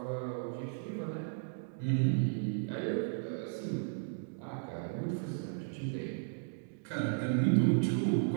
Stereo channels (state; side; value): silent; left; digital silence